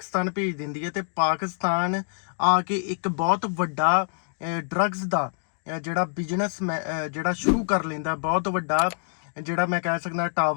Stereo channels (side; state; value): right; silent; digital silence